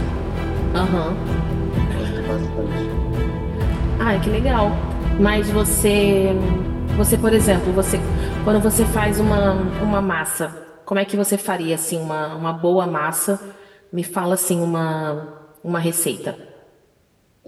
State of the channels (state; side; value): identical; both; correlation 1.00